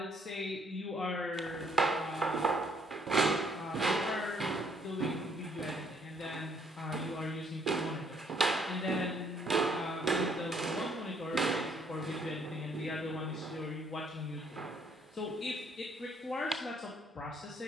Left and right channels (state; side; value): normal; both; correlation 0.66